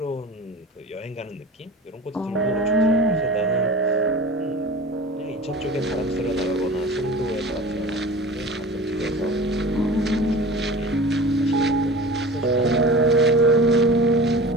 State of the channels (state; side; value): normal; both; correlation 0.37